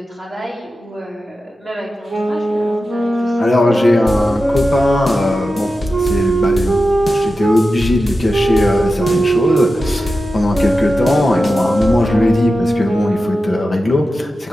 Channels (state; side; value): normal; both; correlation 0.92